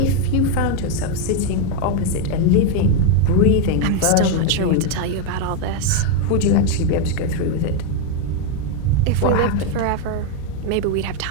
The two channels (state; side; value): different; both; correlation 0.01